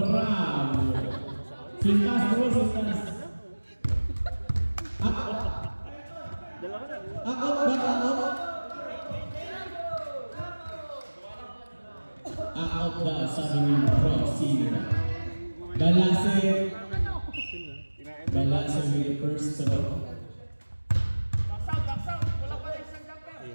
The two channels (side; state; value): both; inverted; correlation -1.00